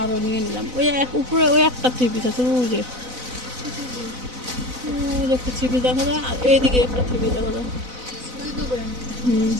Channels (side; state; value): left; late; 4.0 ms